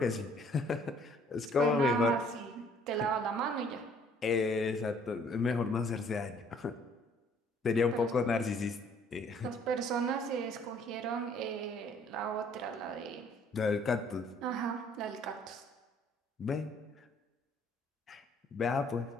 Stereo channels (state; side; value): normal; both; correlation 0.60